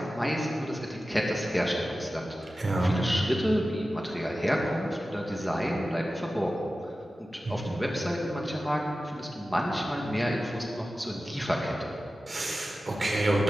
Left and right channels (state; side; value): normal; both; correlation 0.94